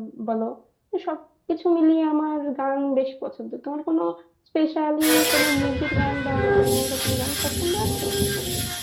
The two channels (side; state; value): both; identical; correlation 1.00